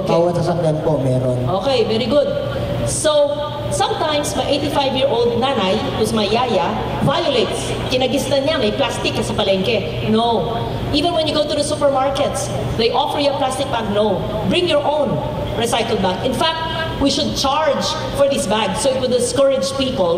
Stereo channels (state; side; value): identical; both; correlation 1.00